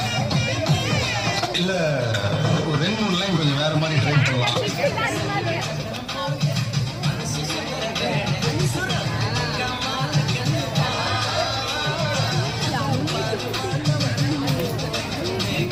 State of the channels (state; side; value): identical; both; correlation 1.00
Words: இல்லை ஒரு 2-3 லைன் கொஞ்சம் வேறு மாதிரி ட்ரை பண்ணலாம்.